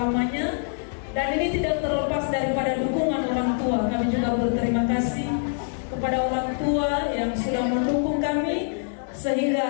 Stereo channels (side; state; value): right; silent; digital silence